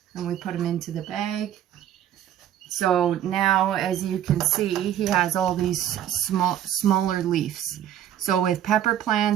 and we put him into the bag. So now, as you can see, he has all these smaller leaves. So with pepper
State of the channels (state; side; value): quieter; left; 11.0 dB